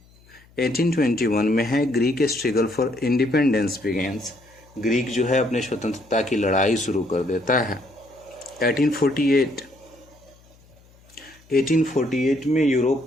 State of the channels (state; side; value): noise; left; hum, 28 dB below the sound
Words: 1821 में है Greek struggle for independence begins. Greek जो है अपने स्वतंत्रता की लड़ाई शुरू कर देता है। 1848 में